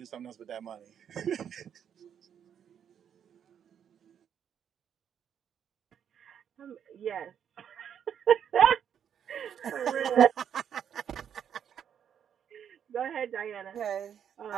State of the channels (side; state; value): left; quieter; 8.6 dB